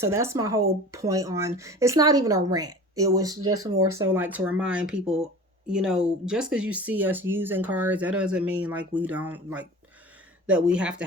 that's my whole point on, it's not even a rant. It was just more so like to remind people, just because you see us using cards, that doesn't mean like we don't, like that we have to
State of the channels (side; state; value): both; normal; correlation 0.38